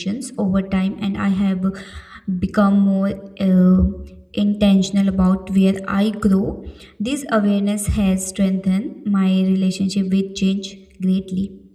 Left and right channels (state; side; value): identical; both; correlation 1.00